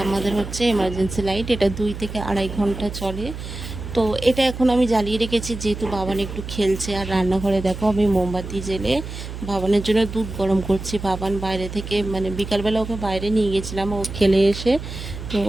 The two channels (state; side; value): noise; right; hum, 9 dB below the sound